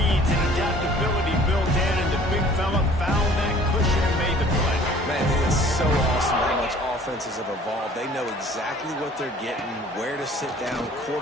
and adaptability built in, and the big fella found that cushion and made the play. Man, it is so awesome how much offenses have evolved. They know exactly what they're getting, where to sit down,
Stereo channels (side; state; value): both; normal; correlation 0.52